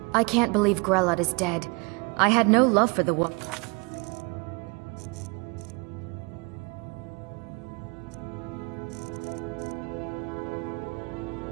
I can't believe Grelot is dead. I had no love for the woman.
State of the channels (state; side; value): quieter; left; 29.8 dB